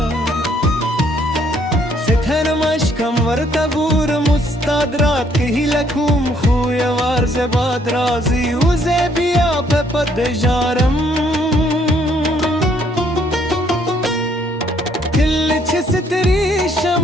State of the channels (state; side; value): normal; both; correlation 0.66